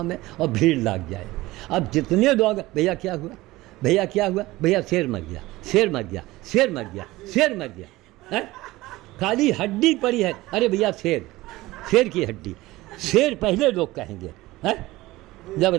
और भीड़ लग जाए। अब जितने लोग भैया क्या हुआ, भैया क्या हुआ, भैया शेर मर गया, शेर मर गया, शेर मर गया, शेर मर गया है? खाली हड्डी पड़ी है, अरे भैया शेर, शेर की हड्डी, शेर पहले लोग कहेंगे है? जब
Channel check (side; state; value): left; quieter; 18.7 dB